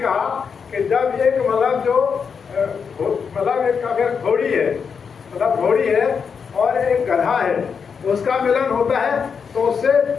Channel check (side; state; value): right; quieter; 6.2 dB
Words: कि जब एक मतलब जो मतलब एक अगर घोड़ी है, मतलब घोड़ी है और एक गधा है, उसका मिलन होता है तो उससे